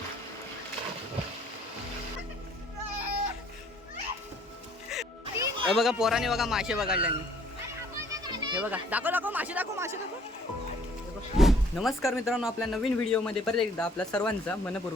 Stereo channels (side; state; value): both; normal; correlation 0.59